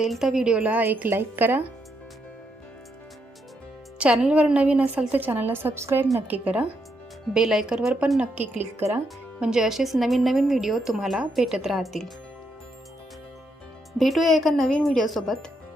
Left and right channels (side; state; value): both; normal; correlation 0.79